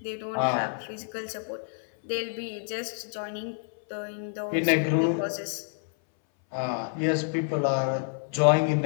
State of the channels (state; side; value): silent; right; 59 dB below the other